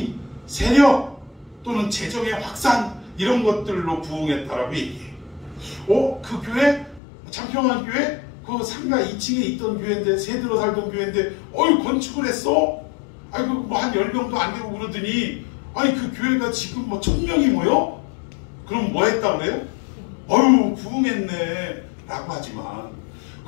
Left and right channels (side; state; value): right; drops out; at 7.0 s